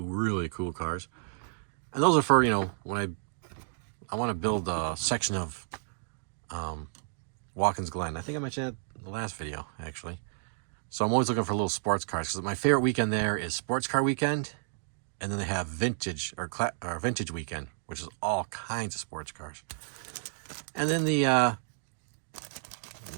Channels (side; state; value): left; silent; digital silence